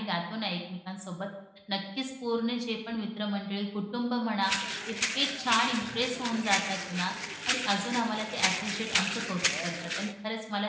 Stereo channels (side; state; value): both; identical; correlation 1.00